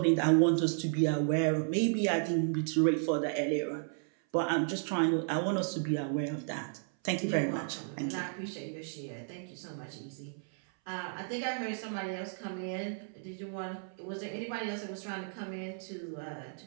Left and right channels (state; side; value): silent; left; 55 dB below the other